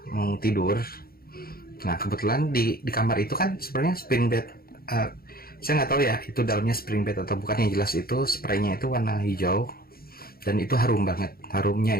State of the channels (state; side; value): late; right; 0.44 ms